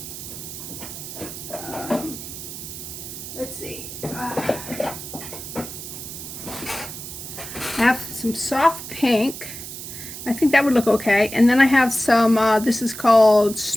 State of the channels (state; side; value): noise; right; hiss, 10 dB below the sound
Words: Let's see. I have some soft pink. I think that would look okay. And then I have some, this is called